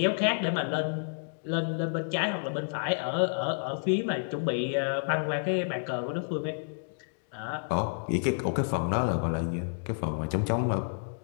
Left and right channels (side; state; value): right; silent; digital silence